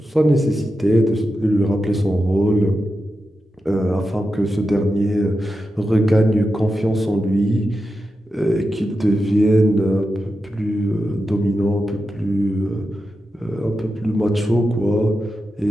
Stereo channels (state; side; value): normal; both; correlation 0.90